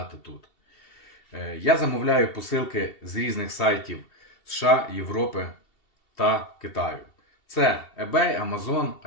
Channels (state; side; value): late; right; 2.7 ms